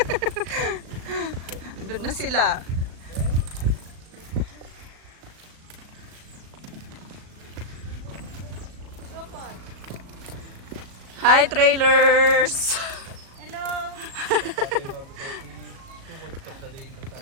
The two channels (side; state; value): left; late; 37 ms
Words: Doon na sila. Hi, trailers! Hello!